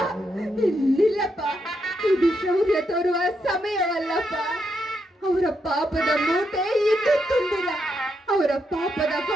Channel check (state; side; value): normal; both; correlation 0.80